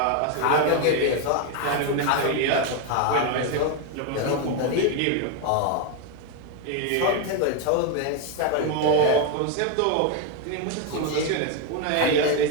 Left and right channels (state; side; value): different; both; correlation 0.01